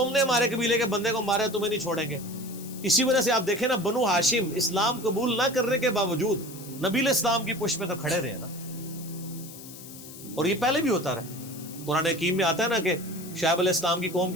نے ہمارے قبیلے کے بندے کو مارا ہے تمہیں نہیں چھوڑیں گے. اسی وجہ سے آپ دیکھیں نا بنو ہاشم اسلام قبول نہ کرنے کے باوجود نبی علیہ السلام کی پشت میں تو کھڑے رہے نا، اور یہ پہلے بھی ہوتا رہا. قرآن حکیم میں آتا ہے نا کہ شعیب علیہ السلام کی قوم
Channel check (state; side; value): noise; left; hiss, 15 dB below the sound